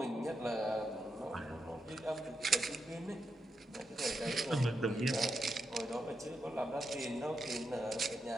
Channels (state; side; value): normal; both; correlation 0.85